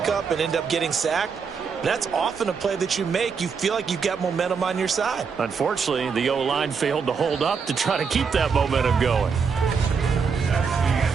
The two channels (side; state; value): left; quieter; 5.8 dB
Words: and end up getting sacked. That's often a play that you make. You feel like you've got momentum on your side. Unfortunately, the O-line failed to hold up to try to keep that momentum going.